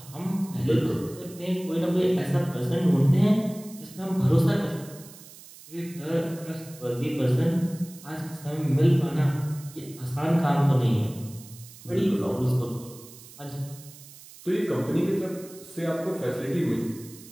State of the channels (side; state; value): right; noise; hiss, 19 dB below the sound